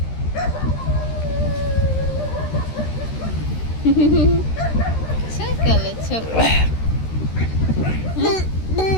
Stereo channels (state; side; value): late; right; 13 ms